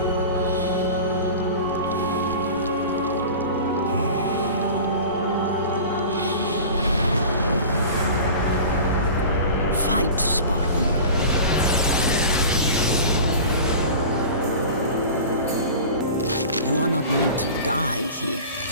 Fight, Spartan. You are not meant to die here.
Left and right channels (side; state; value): both; inverted; correlation -0.36